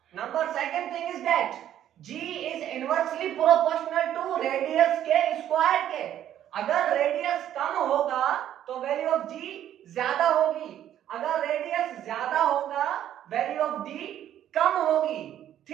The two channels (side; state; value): left; quieter; 11.2 dB